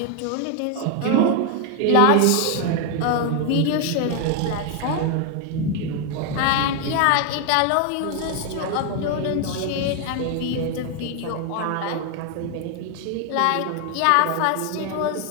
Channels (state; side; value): different; both; correlation 0.01